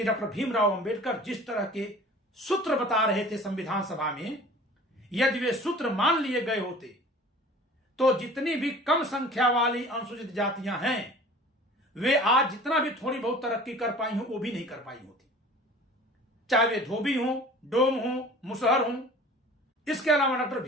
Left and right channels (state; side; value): normal; both; correlation 0.44